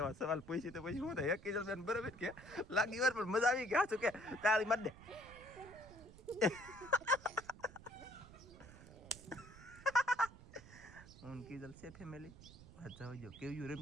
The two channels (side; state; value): right; noise; rumble, 18 dB below the sound